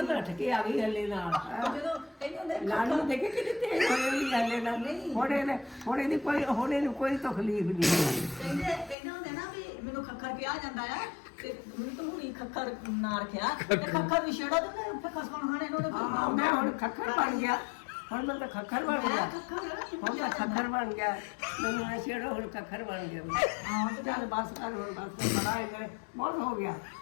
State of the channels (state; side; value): drops out; right; at 9.0 s